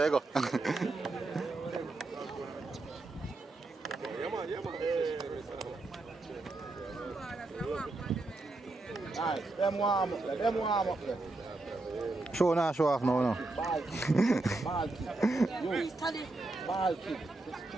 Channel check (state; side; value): quieter; left; 3.1 dB